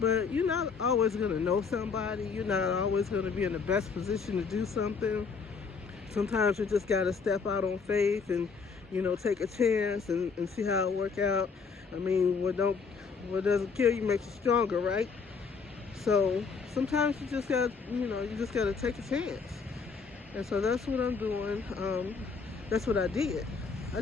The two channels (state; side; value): quieter; right; 5.3 dB